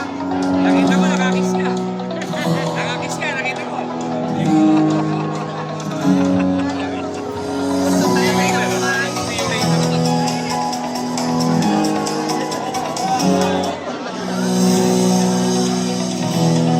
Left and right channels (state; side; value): identical; both; correlation 1.00